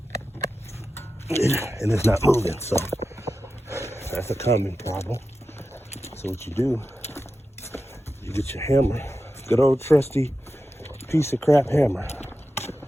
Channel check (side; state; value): both; normal; correlation 0.92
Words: And it's not moving, so that's a common problem. So what you do, you get your hammer, good old trusty piece of crap hammer,